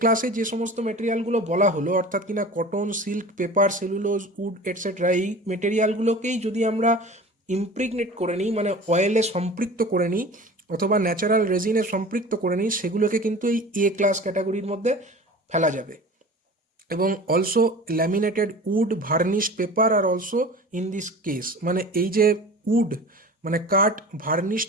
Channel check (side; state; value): both; normal; correlation 0.38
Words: যে সমস্ত মেটেরিয়ালগুলো বলা হলো, অর্থাৎ কিনা cotton, silk, paper, cellulose, wood etcetera, এই মেটেরিয়ালগুলোকেই যদি আমরা ইমপ্রিগনেট করে নিই, মানে অয়েলে সম্পৃক্ত করে নিই অথবা ন্যাচারাল রেজিনে সম্পৃক্ত করে নিই, সেগুলোকে কিন্তু এই এ ক্লাস ক্যাটাগরির মধ্যে ফেলা যাবে। এবং also laminated wood, varnished paper আর অলসো ইন দিস কেস, মানে এই যে উড মানে কাঠ, ভার্নিশড